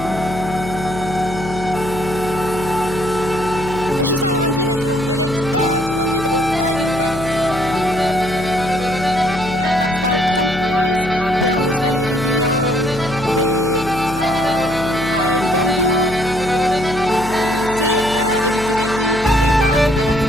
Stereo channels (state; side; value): noise; left; hum, 10 dB below the sound